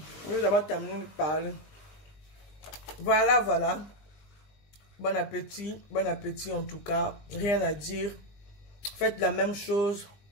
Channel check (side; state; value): right; late; 20 ms